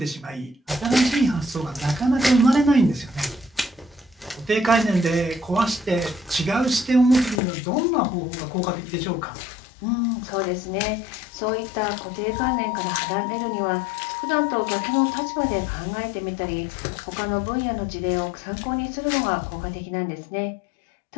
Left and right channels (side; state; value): right; drops out; at 7.4 s